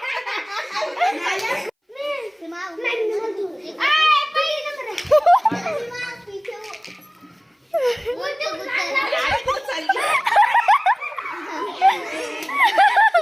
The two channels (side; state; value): both; identical; correlation 1.00